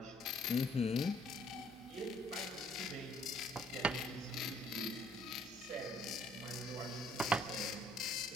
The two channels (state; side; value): normal; both; correlation 0.64